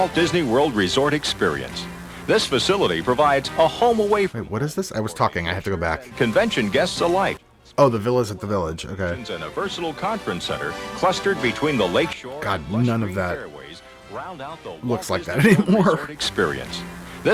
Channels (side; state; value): both; identical; correlation 1.00